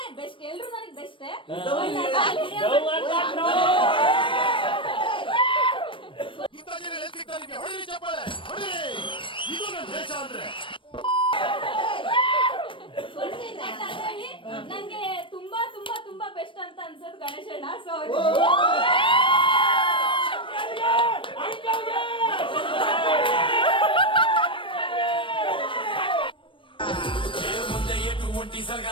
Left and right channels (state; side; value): late; right; 0.25 ms